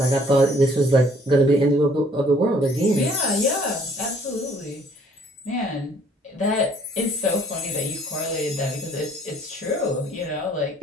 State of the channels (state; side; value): normal; both; correlation 0.59